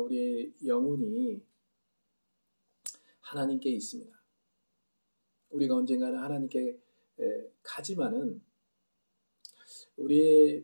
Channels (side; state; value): both; inverted; correlation -1.00